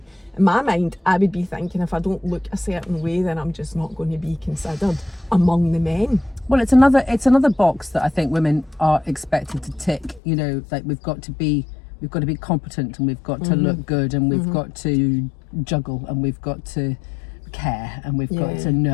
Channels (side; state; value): right; drops out; at 10.2 s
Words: my mind, I would be thinking if I don't look a certain way, then I'm just not going to be considered among the men. Well, it's another box that I think women are expected to tick. You know, like we've got to be competent, and we've got to look good, and we've got to juggle, and we've got to care, and we've got to